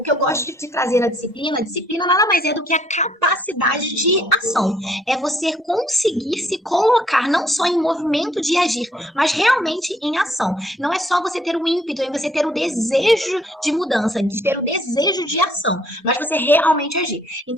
que eu gosto de trazer a disciplina nada mais é do que a capacidade de ação. É você conseguir se colocar não só em movimento de agir, mas realmente em ação. Não é só você ter o ímpeto, é você ter o desejo de mudança, de ter o desejo de ação, mas você realmente agir.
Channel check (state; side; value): normal; both; correlation 0.64